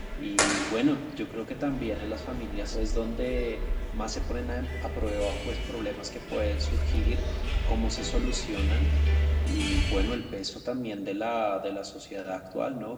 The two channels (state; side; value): identical; both; correlation 1.00